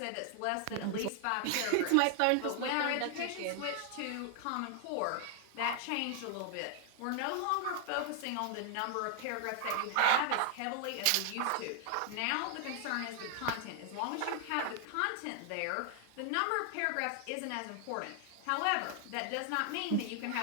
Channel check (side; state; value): both; different; correlation 0.00